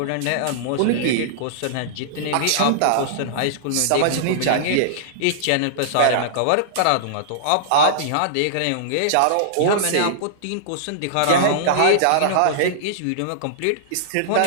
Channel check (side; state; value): both; different; correlation -0.02